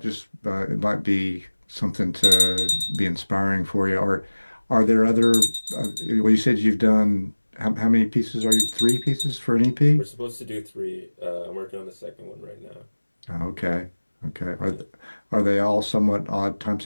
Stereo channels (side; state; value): both; inverted; correlation -1.00